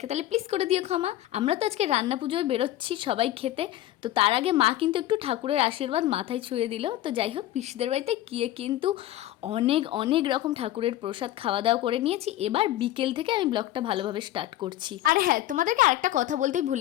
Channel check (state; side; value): quieter; right; 14.2 dB